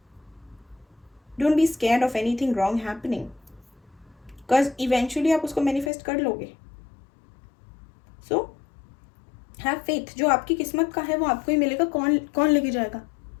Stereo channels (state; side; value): drops out; right; at 5.9 s